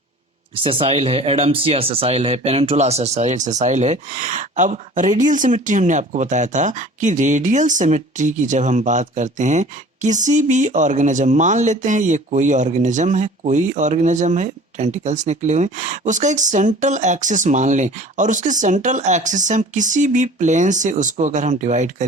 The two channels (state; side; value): normal; both; correlation 0.45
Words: सेसाइल है, एडम्सिया सेसाइल है, पेनिनसुला सेसाइल है। अब रेडियल सिमेट्री हमने आपको बताया था कि रेडियल सिमेट्री की जब हम बात करते हैं किसी भी ऑर्गेनिज्म, मान लेते हैं ये कोई ऑर्गेनिज्म है, टेंटिकल्स निकले हुए, उसका एक सेंट्रल एक्सिस मान लें और उसके सेंट्रल एक्सिस से हम किसी भी प्लेन से उसको अगर हम डिवाइड